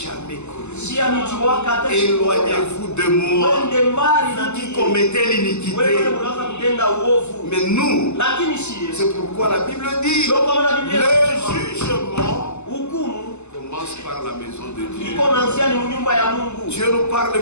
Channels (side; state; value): right; late; 0.82 ms